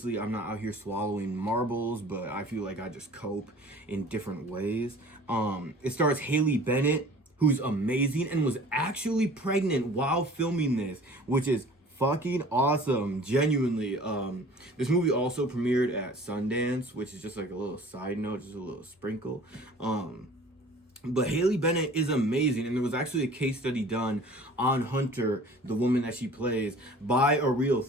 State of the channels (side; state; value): both; normal; correlation 0.46